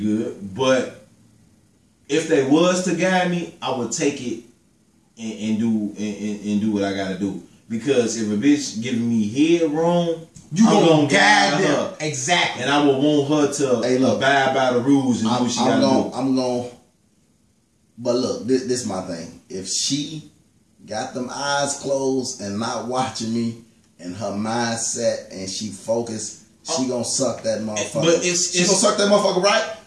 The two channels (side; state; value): both; identical; correlation 1.00